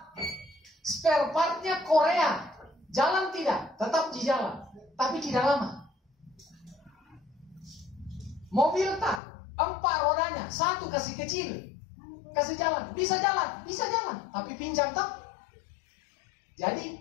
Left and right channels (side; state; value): right; drops out; at 9.2 s